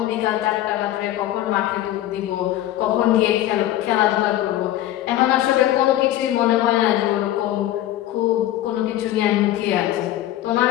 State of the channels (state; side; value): quieter; right; 13.6 dB